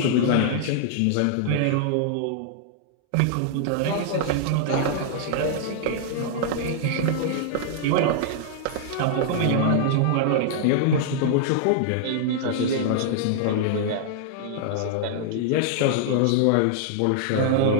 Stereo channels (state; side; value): different; both; correlation -0.01